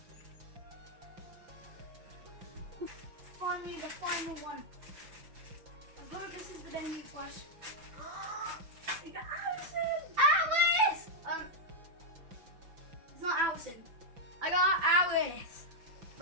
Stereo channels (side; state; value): left; late; 5.9 ms